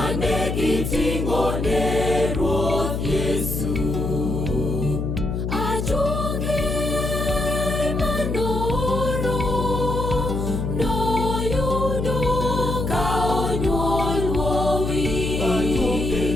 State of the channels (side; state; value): left; noise; hum, 2 dB below the sound